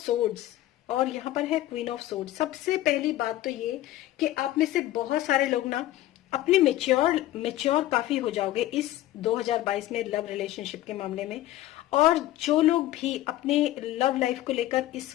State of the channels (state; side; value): quieter; right; 14.8 dB